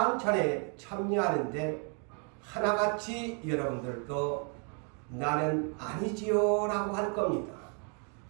참여하는데 하나같이 여러분들도 나는 아니지요 라고 할 겁니다.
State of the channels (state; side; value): quieter; left; 38.4 dB